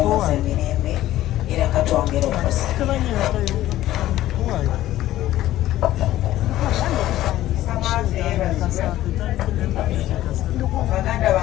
mirembe era katwongera okusa. Baganda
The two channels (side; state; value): right; quieter; 14.4 dB